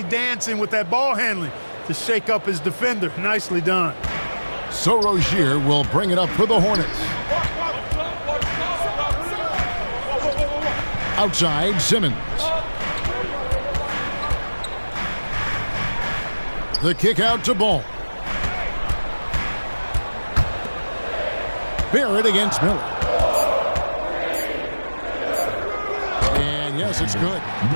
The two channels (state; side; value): inverted; both; correlation -1.00